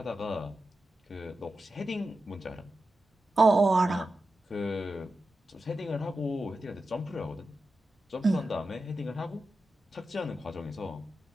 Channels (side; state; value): both; normal; correlation 0.91